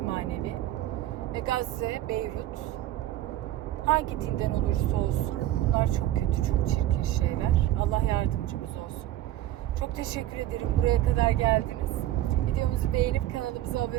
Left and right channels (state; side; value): quieter; left; 13.8 dB